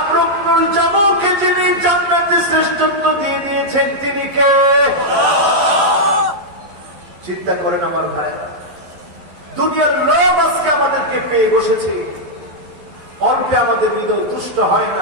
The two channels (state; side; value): late; left; 12 ms